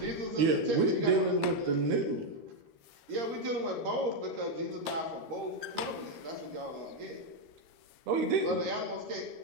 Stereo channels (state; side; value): late; left; 13 ms